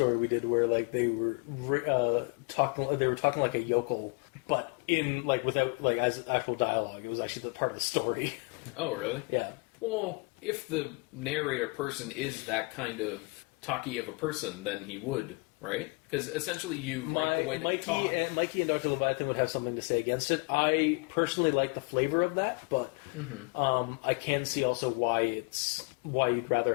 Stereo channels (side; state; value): right; quieter; 29.4 dB